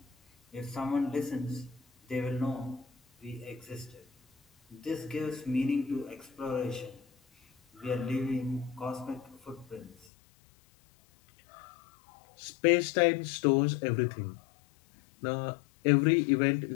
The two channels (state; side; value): drops out; right; at 10.1 s